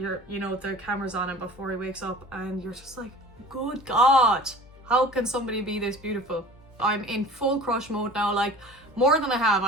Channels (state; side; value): normal; both; correlation 0.42